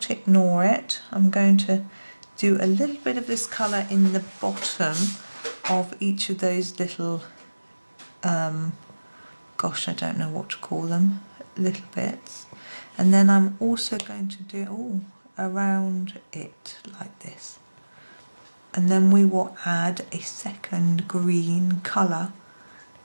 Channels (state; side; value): inverted; both; correlation -1.00